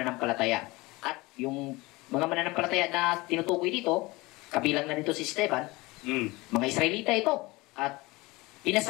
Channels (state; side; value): quieter; right; 22.3 dB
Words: At yung mga mananampalataya na tinutukoy dito, kabilang na dito si Esteban, mga Israelita ito. At